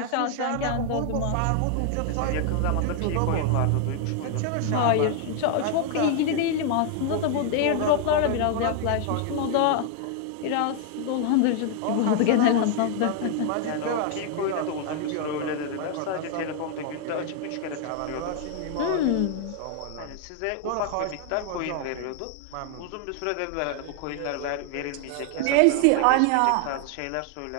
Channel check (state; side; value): different; both; correlation 0.00